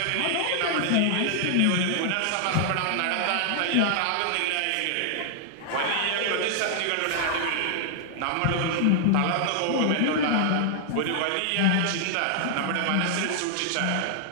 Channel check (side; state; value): both; different; correlation 0.00